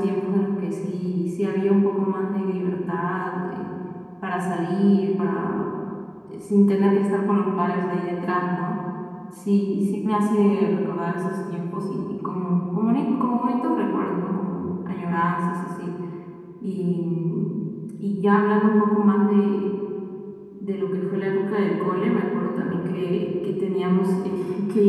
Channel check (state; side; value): identical; both; correlation 1.00